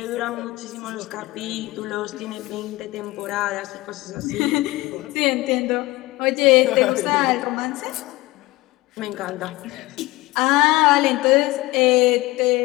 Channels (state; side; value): quieter; right; 19.9 dB